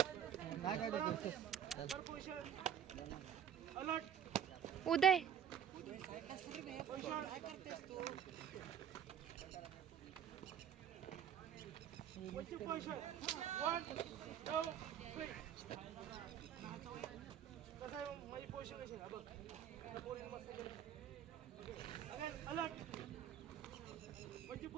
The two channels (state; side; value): quieter; left; 9.1 dB